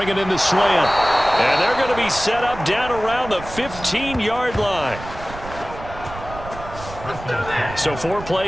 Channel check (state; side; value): noise; right; rumble, 13 dB below the sound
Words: in the slant. And they're going to be set up down around the 15-yard line. So 4